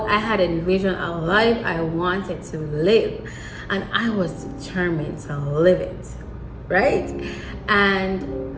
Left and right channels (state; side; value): identical; both; correlation 1.00